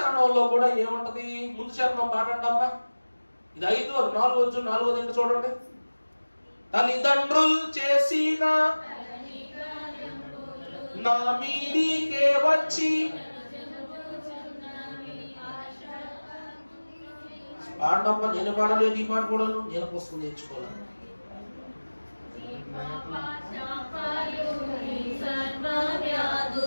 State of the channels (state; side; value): inverted; both; correlation -1.00